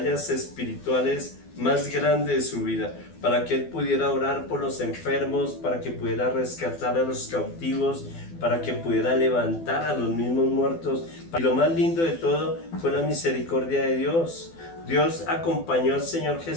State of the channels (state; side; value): late; right; 12 ms